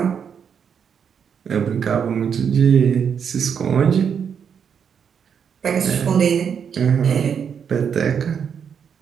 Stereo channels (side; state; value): left; quieter; 7.3 dB